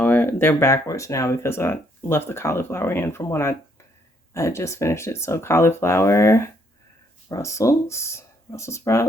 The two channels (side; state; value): both; normal; correlation 0.70